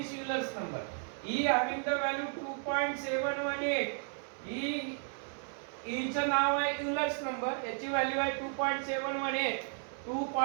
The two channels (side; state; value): left; silent; 55 dB below the other